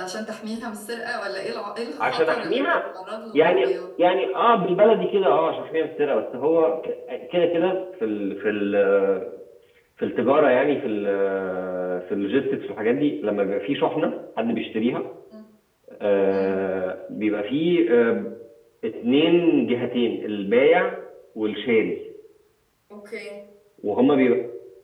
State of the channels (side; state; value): both; identical; correlation 1.00